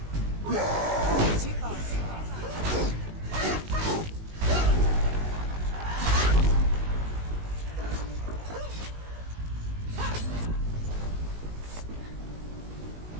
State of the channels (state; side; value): late; left; 19 ms